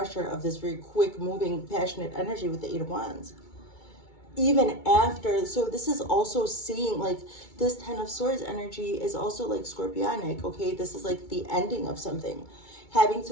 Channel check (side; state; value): right; late; 2.2 ms